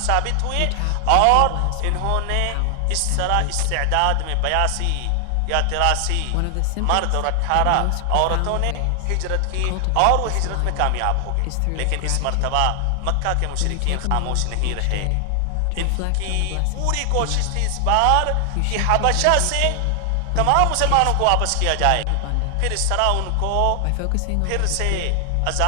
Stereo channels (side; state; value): both; different; correlation 0.00